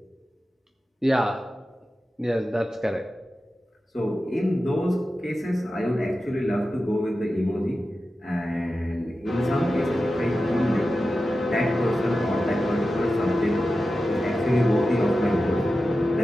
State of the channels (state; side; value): normal; both; correlation 0.93